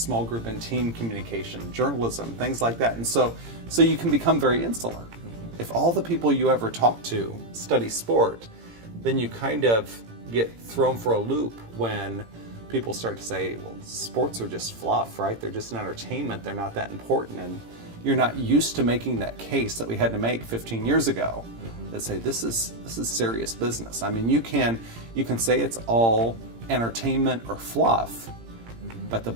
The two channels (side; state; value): left; late; 18 ms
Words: group and team communication, journalism, things like that. And so you can become very insular. If all the people you ever talk to study sport, then you kind of get thrown for a loop when people start to say, well, sports are just fluff, right? They're just an entertainment. They're not that important. And you're not used to making that case that we had to make 15 years ago that say, this is serious business. I mean, you can say it's all entertainment or fluff, but the